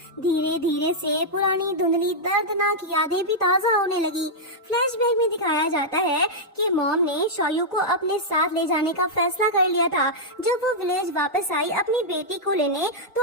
धीरे धीरे से पुरानी धुंधली दर्दनाक यादें भी ताजा होने लगी। फ्लैशबैक में दिखाया जाता है कि मॉम ने शौयू को अपने साथ ले जाने का फैसला कर लिया था। जब वो विलेज वापस आई अपनी बेटी को लेने,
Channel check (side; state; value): both; normal; correlation -0.06